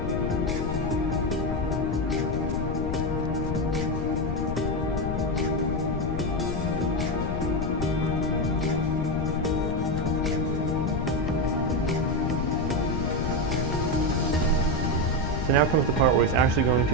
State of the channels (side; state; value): left; noise; rumble, 1 dB below the sound